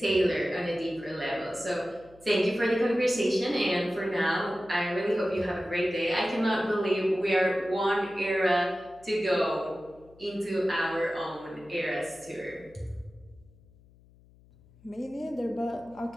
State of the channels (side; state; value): left; noise; hum, 27 dB below the sound